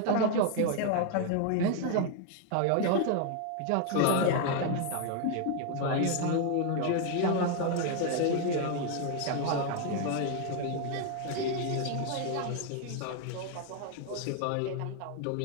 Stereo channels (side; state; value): both; different; correlation 0.00